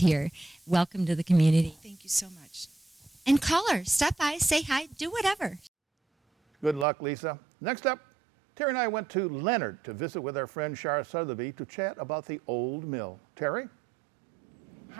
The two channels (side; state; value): left; drops out; at 6.9 s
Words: Welcome to the community. Thank you so much. And caller, stop by, say hi, do whatever. Good luck, Lisa. Next up, Teri and I went to Leonard to visit with our friend Shar Sotheby to chat about the old mill. Teri?